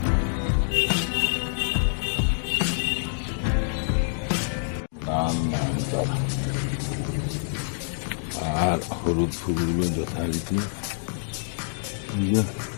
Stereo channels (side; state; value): right; silent; digital silence